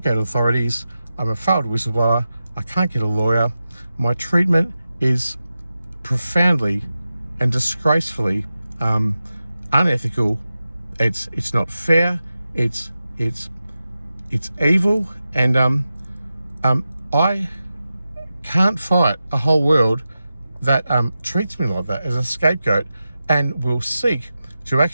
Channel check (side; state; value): both; inverted; correlation -0.92